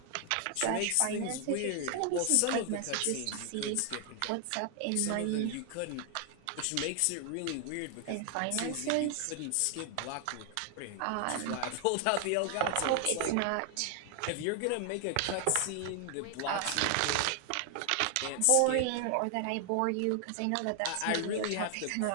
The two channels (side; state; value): both; different; correlation 0.00